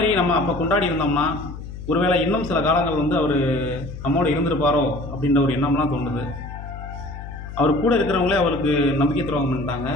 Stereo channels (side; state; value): left; noise; hum, 11 dB below the sound